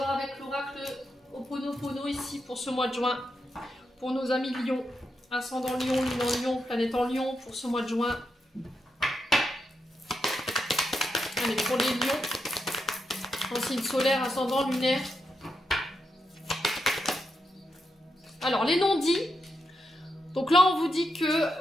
avec l'oracle Ho'oponopono ici pour ce mois de juin. Pour nos amis lions. Ascendant lion, lune en lion, planète en lion pour ce mois de juin. Allez, pour les lions. En signe solaire, ascendant, lunaire. Alors, les non-dits. Donc là, on vous dit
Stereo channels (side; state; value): both; normal; correlation 0.84